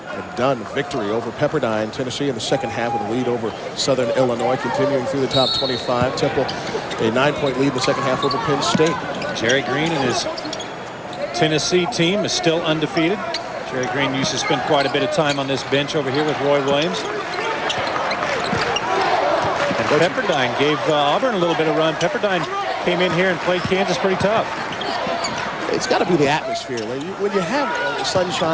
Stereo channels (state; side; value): identical; both; correlation 1.00